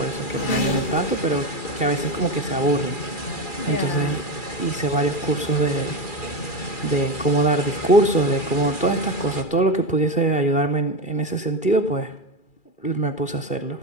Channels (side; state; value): right; late; 2.4 ms